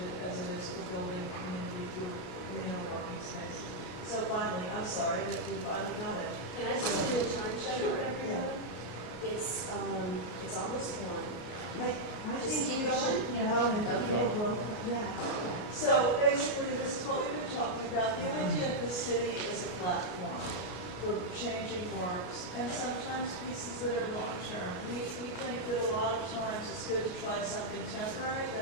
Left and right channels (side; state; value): right; late; 33 ms